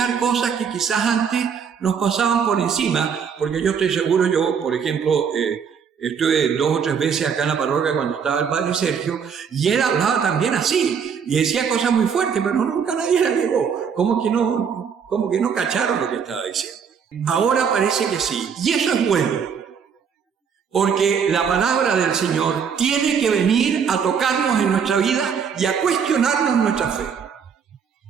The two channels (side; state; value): left; quieter; 6.9 dB